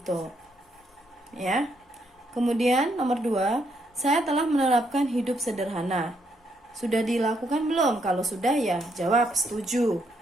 Ya. Kemudian nomor 2, saya telah menerapkan hidup sederhana. Sudah dilakukan belum? Kalau sudah ya jawab setuju,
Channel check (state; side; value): normal; both; correlation 0.75